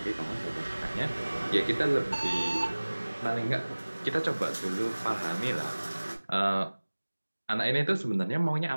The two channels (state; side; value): inverted; both; correlation -1.00